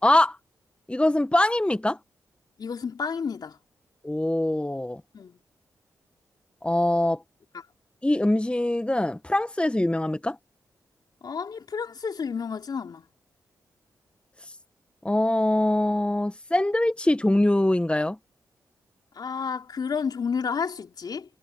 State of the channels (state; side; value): normal; both; correlation 0.94